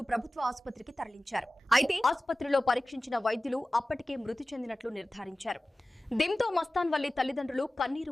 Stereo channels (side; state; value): both; normal; correlation 0.97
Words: ప్రభుత్వ ఆసుపత్రికి తరలించారు. అయితే ఆసుపత్రిలో పరీక్షించిన వైద్యులు అప్పటికే మృతి చెందినట్లు నిర్ధారించారు. దీంతో మస్తాన్ వల్లి తల్లిదండ్రులు